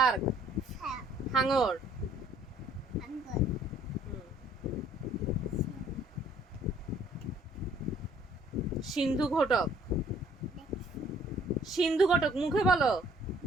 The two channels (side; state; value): both; normal; correlation 0.59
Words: হ্যাঁ, হাঙর। আঙ্গুর। সিন্ধু ঘটক। দেখছি। সিন্ধু ঘটক মুখে বলো।